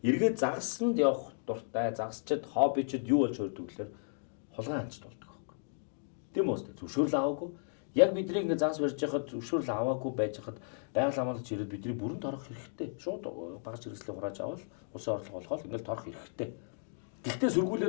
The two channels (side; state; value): right; silent; digital silence